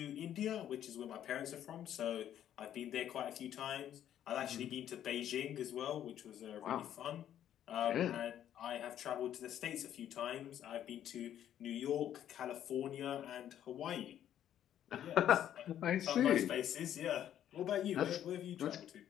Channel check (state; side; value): quieter; right; 10.8 dB